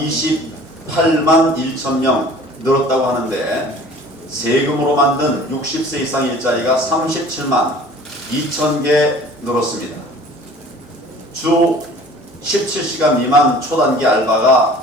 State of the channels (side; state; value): both; normal; correlation 0.47